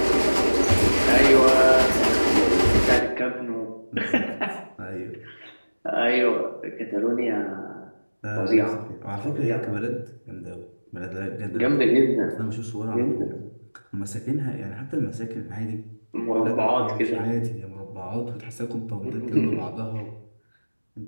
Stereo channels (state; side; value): inverted; both; correlation -1.00